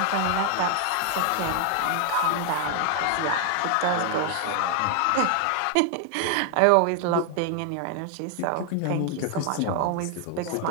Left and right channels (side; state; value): both; different; correlation 0.00